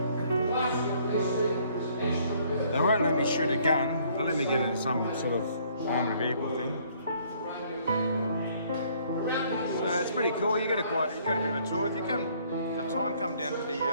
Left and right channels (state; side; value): inverted; both; correlation -0.62